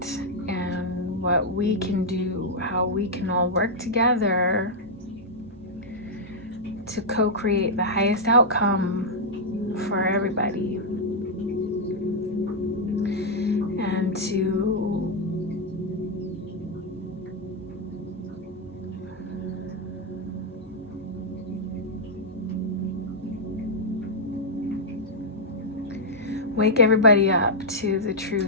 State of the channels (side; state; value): both; normal; correlation -0.04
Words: and what we can do, how we can all work together to co-create the highest outcome for everybody. And to wake everybody up to the